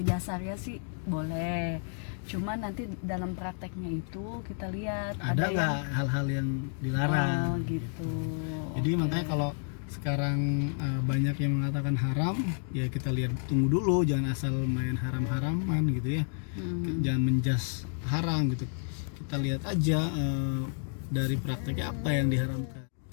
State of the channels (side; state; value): right; silent; 57 dB below the other